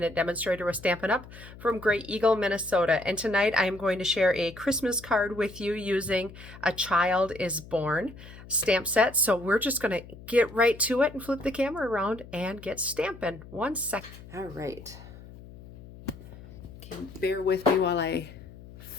demonstrator with Stampin' Up! From Great Eagle, Minnesota. And tonight I am going to share a Christmas card with you using A Child is Born stamp set. So we're just going to get right to it and flip the camera around and get stamping. 1 second. All right. Okay, bear with me while I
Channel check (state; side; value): noise; left; hum, 17 dB below the sound